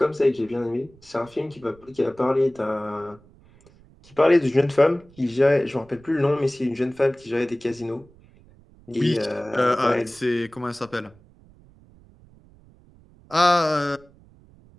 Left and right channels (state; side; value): noise; right; rumble, 27 dB below the sound